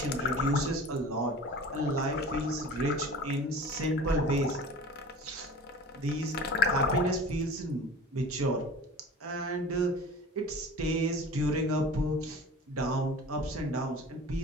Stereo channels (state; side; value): normal; both; correlation 0.39